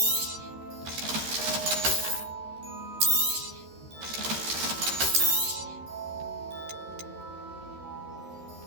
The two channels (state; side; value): late; left; 13 ms